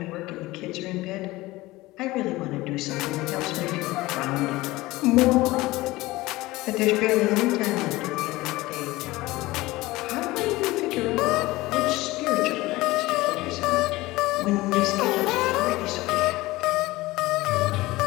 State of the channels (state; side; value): quieter; right; 19.4 dB